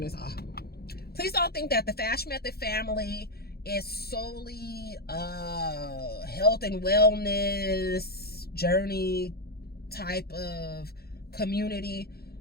this off. Please don't think that the FashMethod family is solely health and wellness journey type of community.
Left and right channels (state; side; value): late; right; 0.46 ms